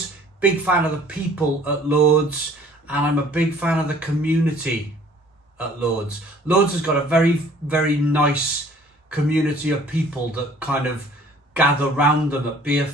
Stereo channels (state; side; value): normal; both; correlation 0.54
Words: Big fan of the people at Lord's. And I'm a big fan of the community at Lord's. Lord's has got a very, very nice community of people that kind of gather round them at beer